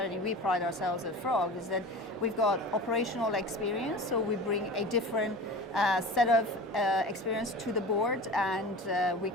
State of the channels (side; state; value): both; normal; correlation 0.35